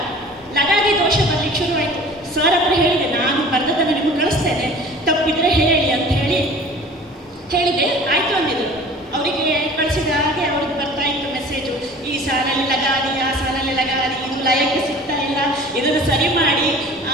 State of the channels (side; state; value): both; normal; correlation 0.44